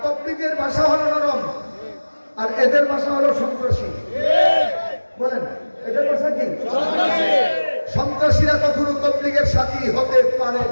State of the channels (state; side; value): inverted; both; correlation -1.00